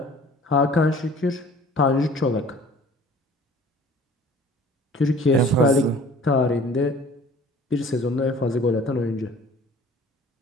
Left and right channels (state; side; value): normal; both; correlation 0.49